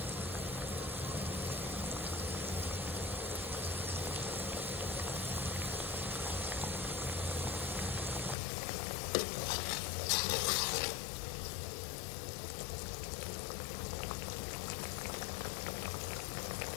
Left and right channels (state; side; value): drops out; right; at 8.3 s